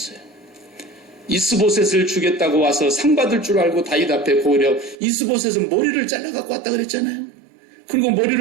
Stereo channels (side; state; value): left; drops out; at 5.0 s